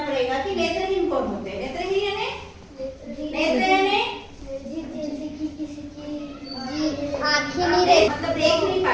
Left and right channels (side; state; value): both; identical; correlation 1.00